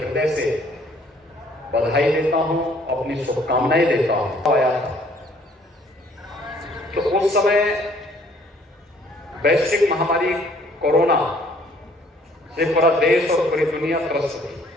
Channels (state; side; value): normal; both; correlation 0.60